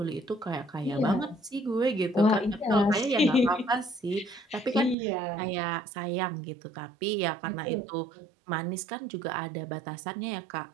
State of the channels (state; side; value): drops out; left; at 5.0 s